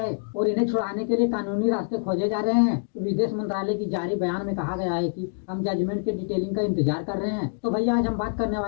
और इन्हें छुड़ाने के लिए कानूनी रास्ते खोजे जा रहे हैं। विदेश मंत्रालय की जारी बयान में कहा गया है कि हम जजमेंट के डिटेलिंग का इंतजार कर रहे हैं। तो भैया आज हम बात करने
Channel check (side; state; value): right; silent; digital silence